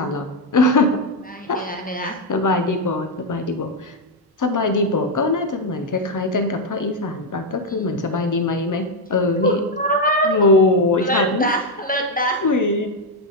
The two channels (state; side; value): normal; both; correlation 0.04